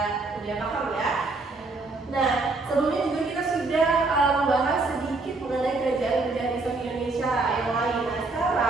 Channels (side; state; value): left; quieter; 3.5 dB